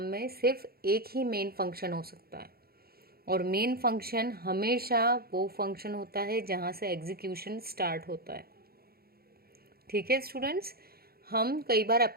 में सिर्फ एक ही मेन फंक्शन हो सकता है, और मेन फंक्शन हमेशा वो फंक्शन होता है जहाँ से एग्जीक्यूशन स्टार्ट होता है। ठीक है स्टूडेंट्स। हम कई बार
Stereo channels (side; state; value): left; late; 0.44 ms